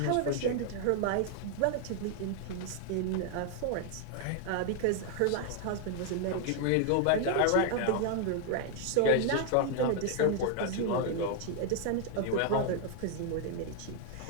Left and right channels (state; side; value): different; both; correlation 0.00